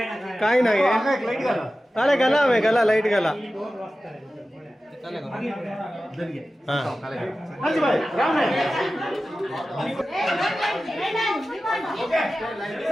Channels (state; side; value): normal; both; correlation 0.95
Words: काय नाही अरे गला में गला लाइट गला हाँ